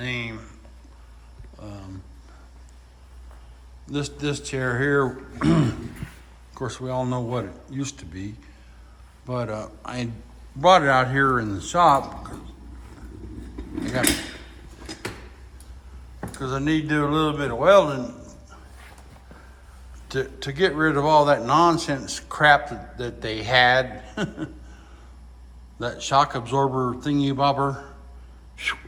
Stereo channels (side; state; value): both; identical; correlation 1.00